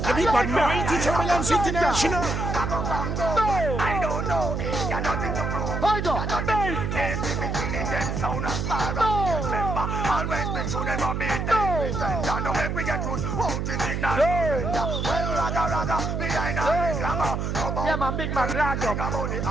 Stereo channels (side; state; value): right; noise; hum, 1 dB below the sound